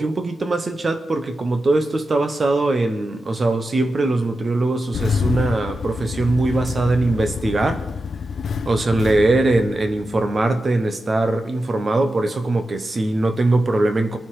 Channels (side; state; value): both; normal; correlation 0.91